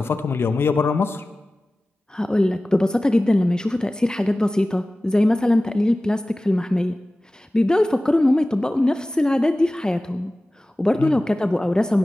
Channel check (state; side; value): normal; both; correlation 0.97